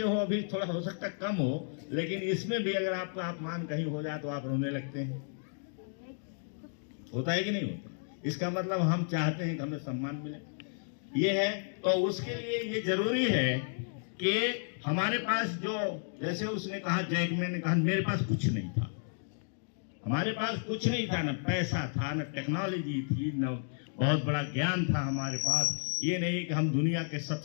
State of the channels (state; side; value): silent; right; digital silence